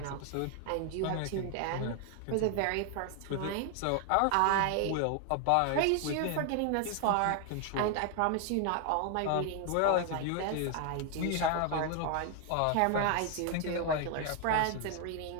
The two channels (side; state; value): both; different; correlation 0.00